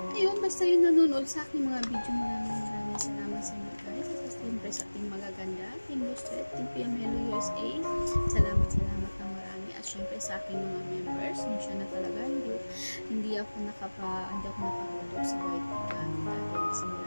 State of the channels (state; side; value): inverted; both; correlation -1.00